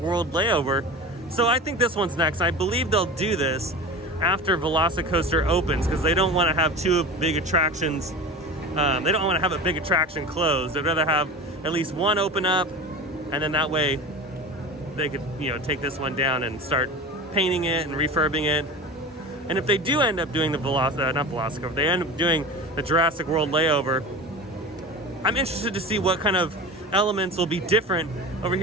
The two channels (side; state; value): both; normal; correlation 0.31